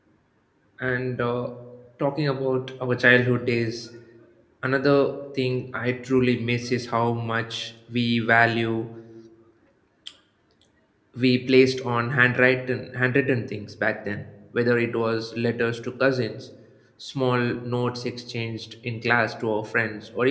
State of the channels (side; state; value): both; identical; correlation 1.00